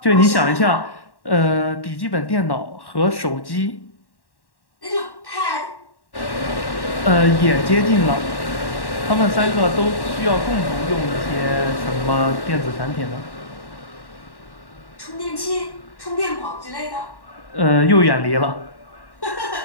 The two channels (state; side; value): late; right; 1.1 ms